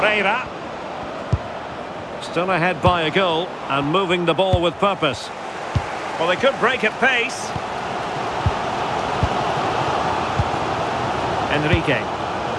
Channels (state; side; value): identical; both; correlation 1.00